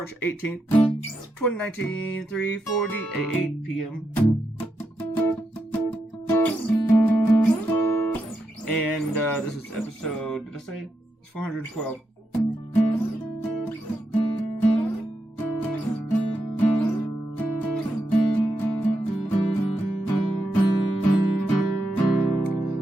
18th, 2019, 3:48 p.m. And this is episode, did I say? It's 412.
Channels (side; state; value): both; normal; correlation 0.84